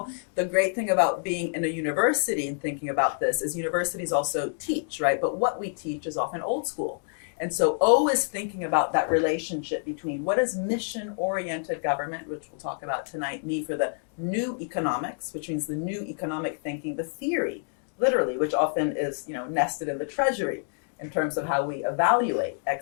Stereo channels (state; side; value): silent; right; digital silence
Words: The great thing about being in a university and thinking about this is universities also teach, right? But what we teach is often old school. And so always thinking about that relationship between what does mission-oriented government, which we'll talk about tonight, mean for the new economics, which means the new economic thinking, the theory literally, which often is, nested in the treasury in terms of how we evaluate